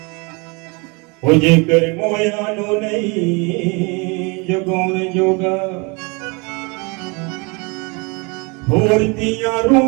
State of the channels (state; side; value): quieter; left; 30.0 dB